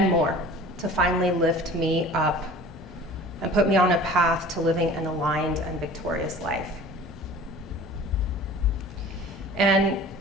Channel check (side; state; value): both; normal; correlation 0.43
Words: more to finally lift me up and put me on a path to living an aligned and victorious life. And